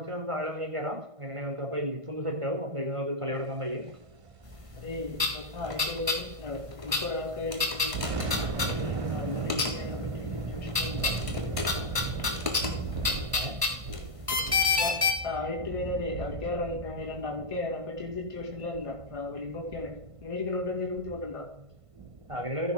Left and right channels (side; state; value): left; late; 1.5 ms